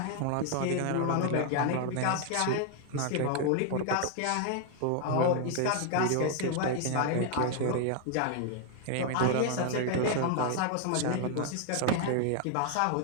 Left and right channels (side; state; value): both; different; correlation 0.00